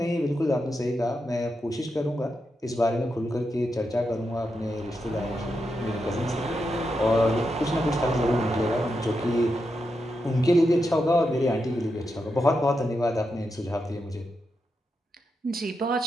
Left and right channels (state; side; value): normal; both; correlation 0.86